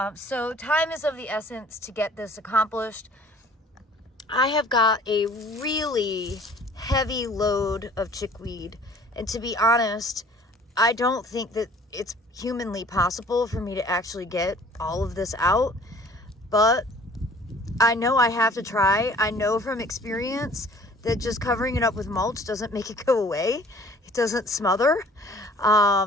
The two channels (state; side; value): normal; both; correlation 0.52